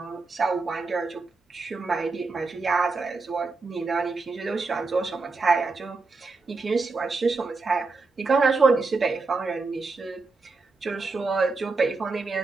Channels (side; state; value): left; quieter; 3.9 dB